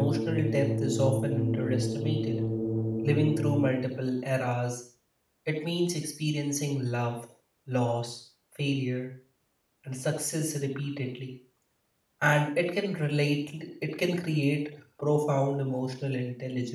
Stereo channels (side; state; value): both; identical; correlation 1.00